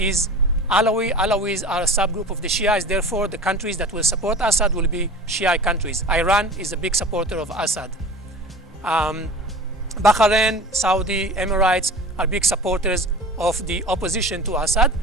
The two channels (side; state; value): both; normal; correlation 0.37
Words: Alawi. Alawis are a subgroup of the Shias. Therefore, the countries that will support Assad will be Shia countries. Iran is a big supporter of Assad. Bahrain, Saudi, Emirates are big supporters of the opposition to Assad.